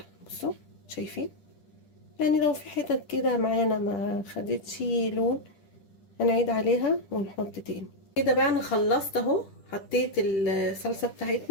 بصوا شايفين؟ يعني لو في حتت كده معانا ما خدتش لون هنعيد عليها ونحط تاني. كده بقى انا خلصت اهو، حطيت الصلصه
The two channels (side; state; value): right; late; 10 ms